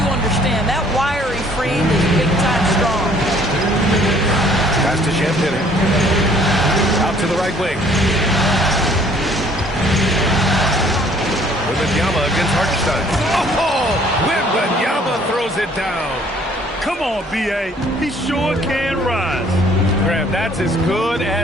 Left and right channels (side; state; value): both; normal; correlation 0.59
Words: understand that wiry frame is big-time strong. Pass to Champagnie. Out to the right wing. Wembanyama against Hartenstein. Oh! Wembanyama throws it down. Come on, B.A. He sure can rise. Graham, that's as good